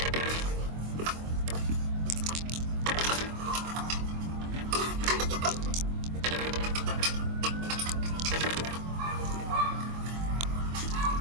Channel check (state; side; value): late; left; 24 ms